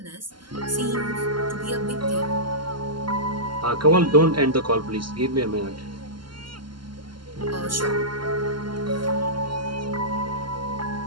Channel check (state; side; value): late; left; 0.72 ms